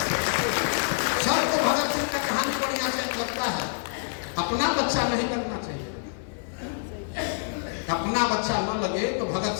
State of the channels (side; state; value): right; silent; digital silence